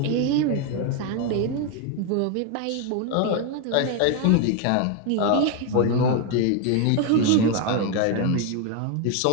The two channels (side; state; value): both; different; correlation 0.01